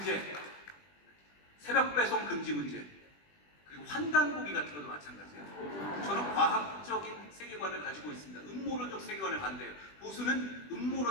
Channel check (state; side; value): late; right; 20 ms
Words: 새벽 배송 금지 문제, 그리고 환단고기 같은 것도 마찬가지예요. 저는 과학적인 세계관을 가지고 있습니다. 음모론적 세계관을 반대해요. 보수는